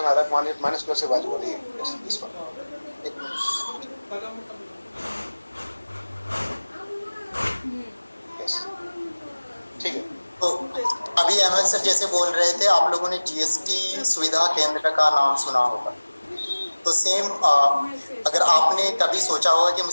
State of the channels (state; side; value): inverted; both; correlation -1.00